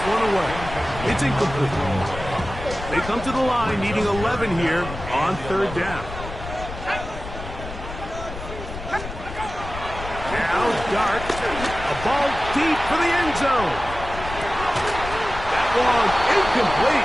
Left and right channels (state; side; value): noise; left; rumble, 10 dB below the sound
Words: one away. It's incomplete. They come to the line needing 11 here on third down. Now Dart. A ball deep for the end zone. That one